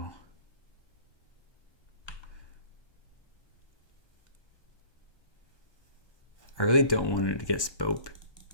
I really don't want it to get spelled.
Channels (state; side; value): late; right; 1.2 ms